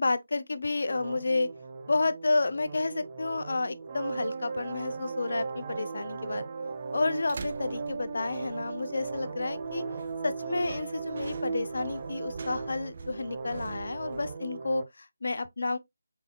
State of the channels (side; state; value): both; inverted; correlation -0.93